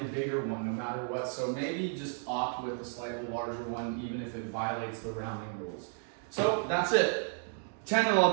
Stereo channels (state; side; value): silent; left; 56 dB below the other